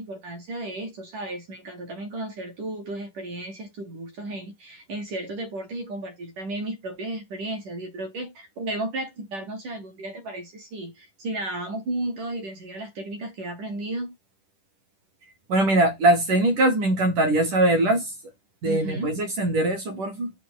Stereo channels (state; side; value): late; left; 10 ms